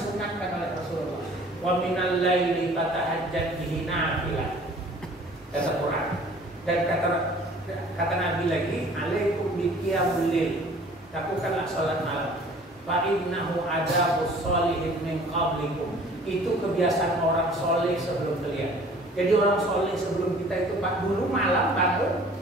oleh Rasulullah. Wa minal laili fatahajjat bihi nafilah. Kata Quran. Dan kata Nabi lagi, alaikum biqiyamul lail. Lakukanlah sholat malam. Fa innahu adabus sholihin min qablikum. Itu kebiasaan orang soleh sebelum kalian. Jadi orang soleh sebelum kita itu Pak dulu malam bangun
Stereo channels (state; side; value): normal; both; correlation 0.50